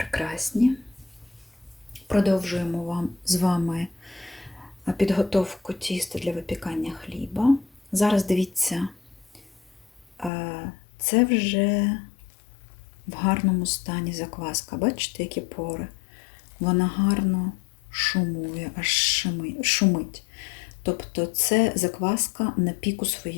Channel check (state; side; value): drops out; right; at 10.3 s